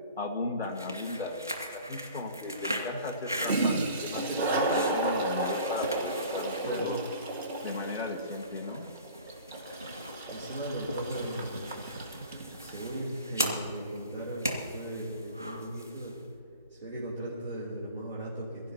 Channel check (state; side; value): inverted; both; correlation -0.43